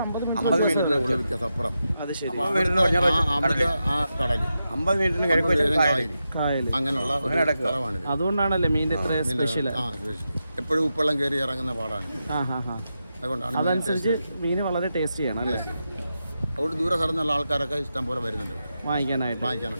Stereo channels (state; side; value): inverted; both; correlation -0.88